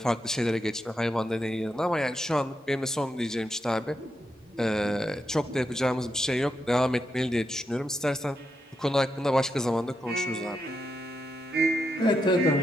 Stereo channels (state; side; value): normal; both; correlation 0.84